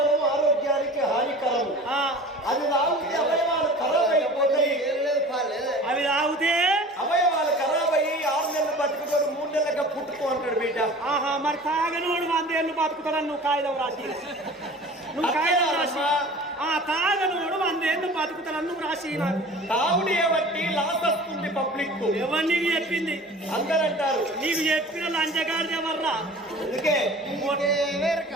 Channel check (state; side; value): normal; both; correlation 0.41